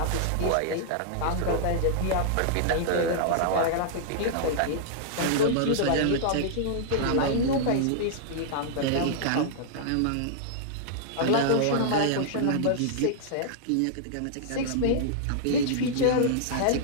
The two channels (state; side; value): different; both; correlation -0.01